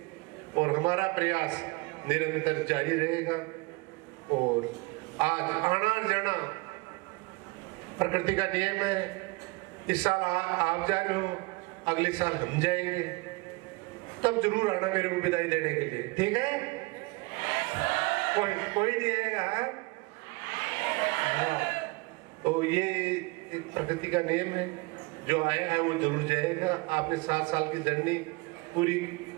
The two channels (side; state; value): left; quieter; 26.3 dB